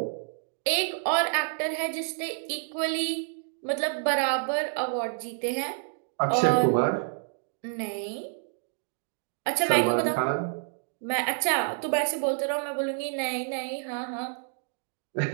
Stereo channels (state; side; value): silent; left; digital silence